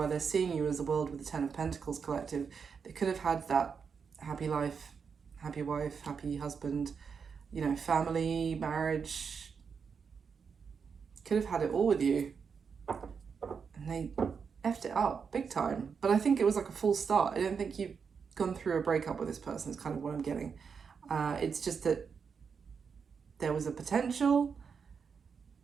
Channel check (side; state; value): left; quieter; 6.1 dB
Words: they're seeing you as the world with the Ten of Pentacles collective. They could have had that happy life, happy wife, happy husband, you know, family, marriage. Could have had it all with you. And they effed it up big time. But I think it was like a full start. I don't think you've gone through a breakup with this person, is kind of what I'm getting. It's just that there was a potential.